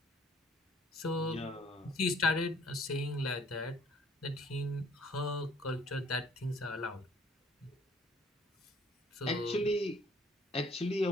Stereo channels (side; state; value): both; normal; correlation 0.59